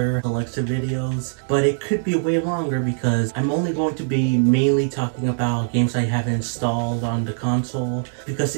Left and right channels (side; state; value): left; silent; digital silence